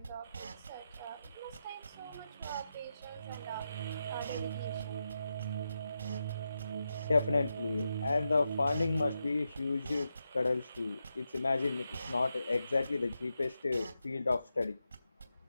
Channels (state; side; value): inverted; both; correlation -0.87